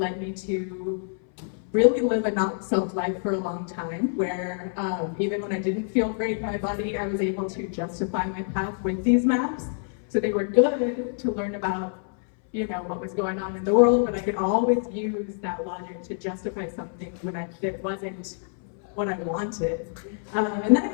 me to really live a not self life for a long time, where even when I didn't feel great in my body, I was able to justify my path with these maps. So they were good to learn about, you know, what was going on in the world, but I could always use that logic to justify something when it wasn't what I wanted. And then I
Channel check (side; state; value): right; silent; 59 dB below the other